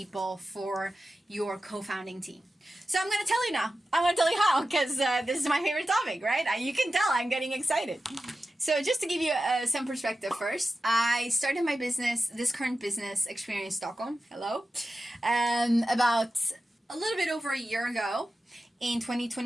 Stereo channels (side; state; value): both; normal; correlation 0.93